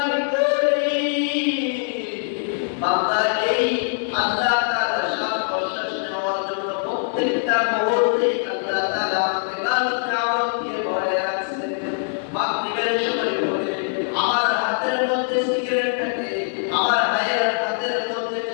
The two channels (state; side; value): silent; right; 64 dB below the other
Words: করি। বান্দা এই আল্লাহ তাআলা শ্বাস প্রশ্বাস নেওয়ার জন্য প্রত্যেকটা মুহূর্তে আল্লাহ তাআলা আমাকে লাল নিয়ামত দিয়ে ভরে রাখছে। মাগরিবের সময় করে আমার হাতের মধ্যে সিগারেট থাকে, আমার ভাইয়ের হাতের মধ্যে